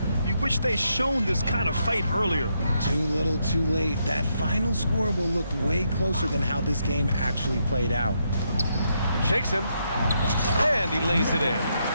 You wish they shown this kind of fight earlier. Too little, too late. That final score will look way closer than how this game actually played out. Shakes him. And he lays it in.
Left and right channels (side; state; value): both; inverted; correlation -0.79